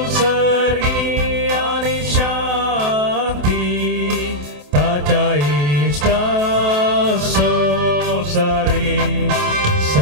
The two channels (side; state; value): left; late; 28 ms